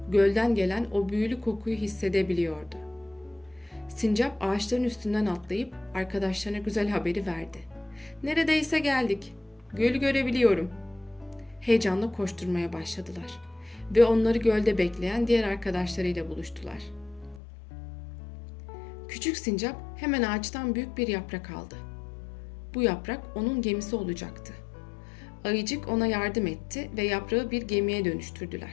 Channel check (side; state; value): right; drops out; at 17.4 s